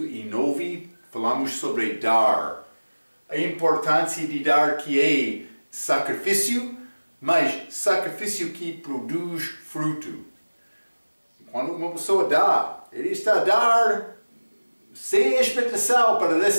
e 9 falamos sobre dar. A importância de dar que é sacrifício, mas sacrifício que produz fruto. Quando uma pessoa dá, ele está a dar sem expectação para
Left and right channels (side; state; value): both; inverted; correlation -1.00